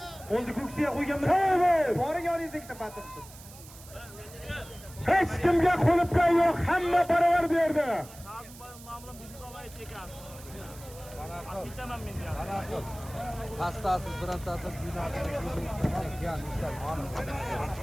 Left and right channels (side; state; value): right; noise; hiss, 19 dB below the sound